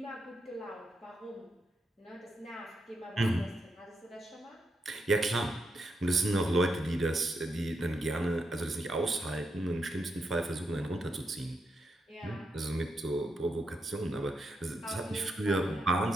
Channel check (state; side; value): normal; both; correlation 0.83